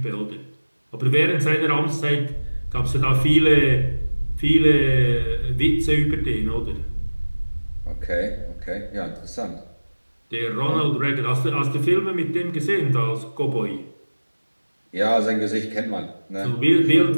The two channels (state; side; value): inverted; both; correlation -1.00